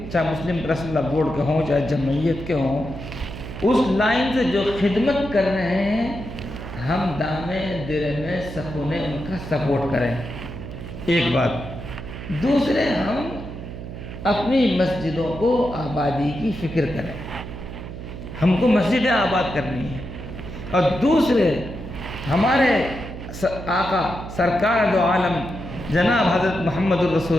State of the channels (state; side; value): noise; right; hum, 10 dB below the sound